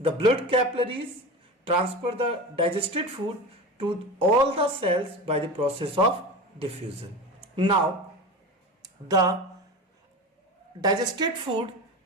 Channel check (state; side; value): normal; both; correlation 0.28